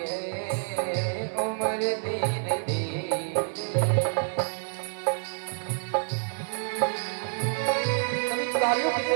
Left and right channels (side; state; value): left; silent; digital silence